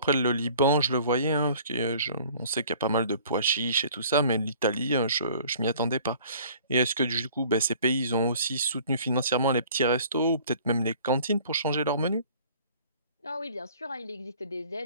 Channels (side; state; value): both; inverted; correlation -0.52